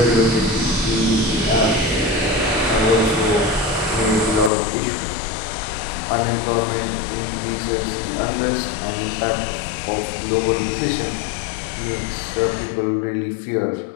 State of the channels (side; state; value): right; drops out; at 4.5 s